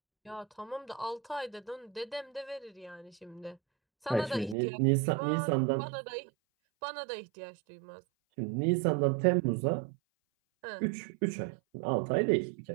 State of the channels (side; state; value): left; drops out; at 4.5 s